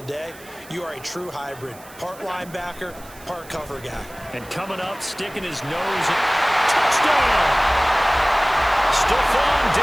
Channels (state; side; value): noise; right; hiss, 21 dB below the sound